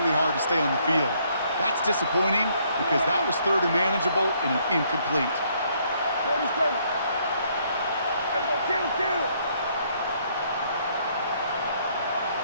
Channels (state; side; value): inverted; both; correlation -0.68